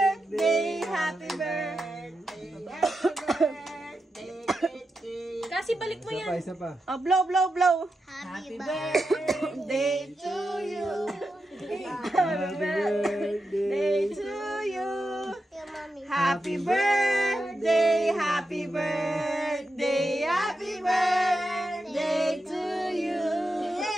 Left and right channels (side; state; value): both; normal; correlation 0.88